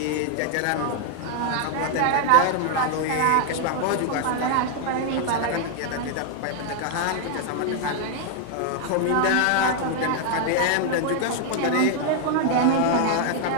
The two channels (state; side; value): different; both; correlation 0.00